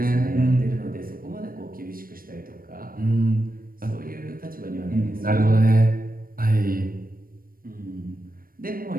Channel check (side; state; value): left; late; 0.41 ms